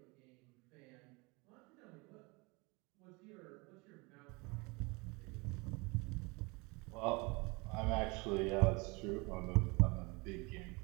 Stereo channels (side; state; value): left; quieter; 27.2 dB